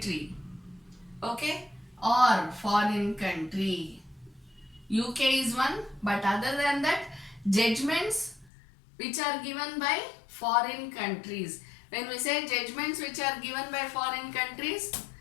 okay, or foreign country. UK is one, but other than that, judgments which are given by foreign countries. When we say judgments which are given by foreign countries,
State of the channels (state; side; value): drops out; right; at 8.5 s